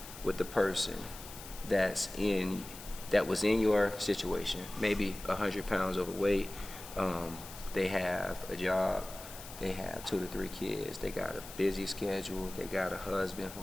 with the person that was in your situation, maybe 100 pounds overweight? They have a job, they have 2 to 3 kids, they got a busy schedule, they got a husband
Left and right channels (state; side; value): noise; left; hiss, 14 dB below the sound